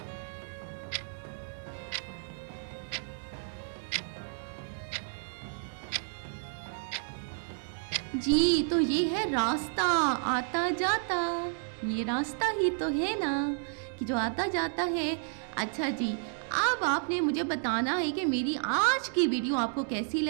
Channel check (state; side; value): silent; left; digital silence